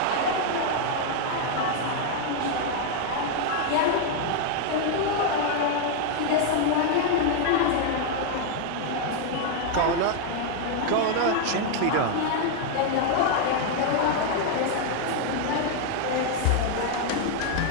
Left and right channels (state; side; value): different; both; correlation 0.00